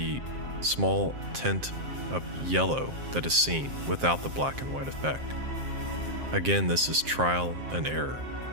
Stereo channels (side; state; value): left; late; 7.6 ms